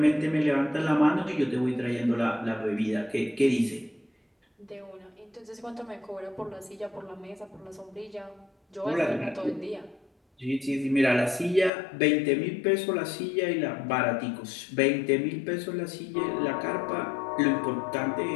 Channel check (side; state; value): right; drops out; at 11.7 s